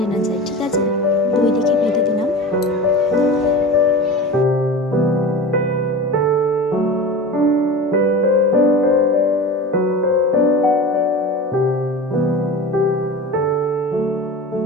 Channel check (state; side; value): normal; both; correlation 0.32